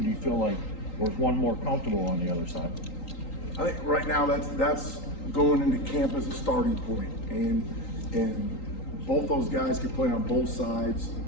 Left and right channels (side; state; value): right; late; 3.8 ms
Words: do you feel like there's one more comfortable on the other side? I think right now that's going into camp as a starting point, and both those guys can play on both sides,